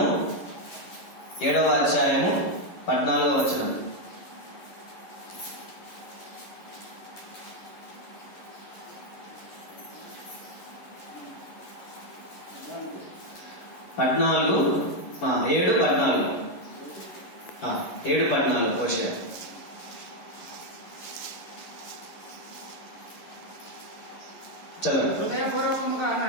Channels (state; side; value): late; right; 11 ms